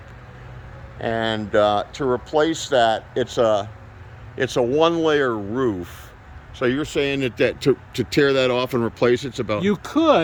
And to replace that, it's a one-layer roof. So you're saying that to tear that off and replace it's about... You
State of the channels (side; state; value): both; identical; correlation 1.00